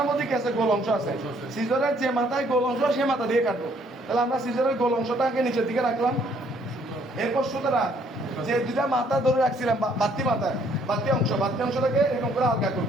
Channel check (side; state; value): both; normal; correlation 0.65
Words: মধ্যে কি আছে? গোল অংশ আছে। সিজরের যে মাথায় গোল অংশ, সে মাথা দিয়ে কাটবো। তাহলে আমরা সিজরের গোল অংশটাকে নিচের দিকে রাখলাম। এরপর সুতরাং যে 2টা মাথা ধরে রাখছিলাম, বাড়তি অংশটাকে এরকম করে হালকা